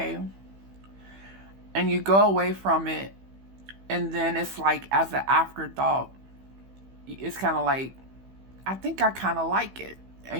And you go away from it and then it's like as an afterthought, it's kind of like, I think I kind of like it.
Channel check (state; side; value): late; left; 15 ms